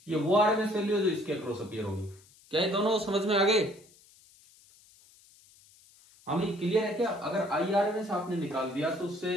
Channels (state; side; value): noise; left; hiss, 27 dB below the sound